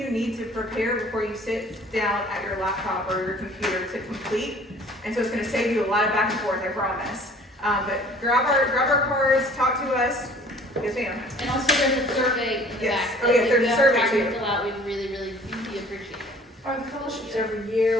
need to prepare before you sit down at your laptop or your computer to complete. And so it's going to save you a lot of back and forth, I promise. But grab our cards, talk to us. Yes, ma'am. And also there's a survey in the Yes. back. Oh, yeah, there's a survey If too. you have time to fill out, we'd really appreciate it. Are the fellowships every year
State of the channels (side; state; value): both; normal; correlation 0.51